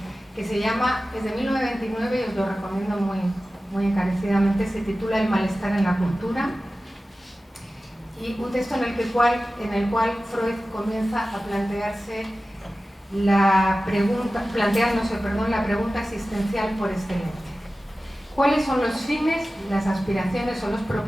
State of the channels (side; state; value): both; normal; correlation 0.95